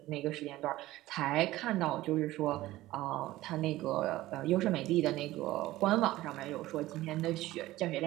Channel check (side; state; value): left; quieter; 16.7 dB